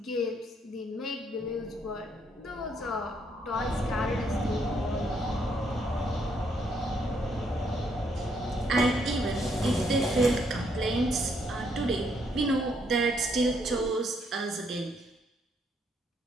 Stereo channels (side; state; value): both; normal; correlation 0.72